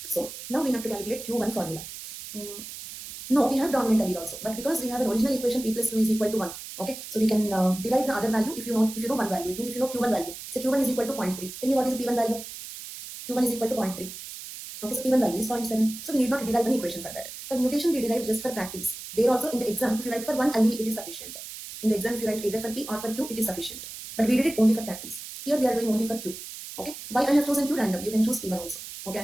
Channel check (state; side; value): noise; right; hiss, 11 dB below the sound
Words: so now we have to calculate Q1 formula. No, we have dominant allele also, but because we have an original equation p plus 2 is equal to 1, okay, so we can derive the other value if you know one value. It means if you know q1 value, say q1 is equal to 0.3. Tell me what is the p1 value? q1 is equal to 0.3. Okay, so p1 value is 0.7. So we need not derive an equation for that. For mutation, we derive just for practice. There also in the exam, if you write for one allele, it is sufficient. In the exam, if you write either for p or for q, it is sufficient. But we did it only for practice. Here we are doing only for q. Okay, why I have chosen q random? You can choose p1 also. Okay, I